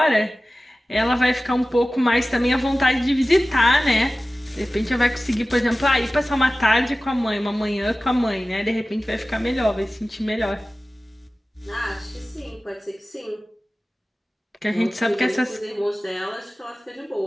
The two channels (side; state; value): both; normal; correlation 0.96